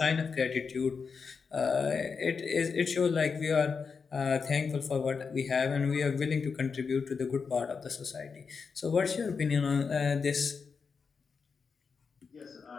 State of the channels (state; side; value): quieter; right; 5.4 dB